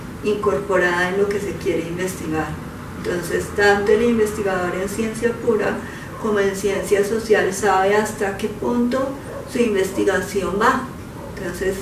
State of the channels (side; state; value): both; identical; correlation 1.00